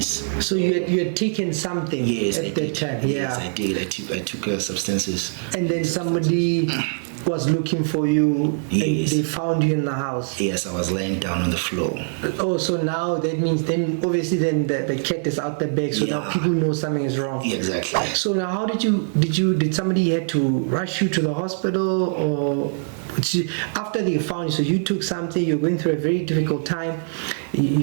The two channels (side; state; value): left; silent; 60 dB below the other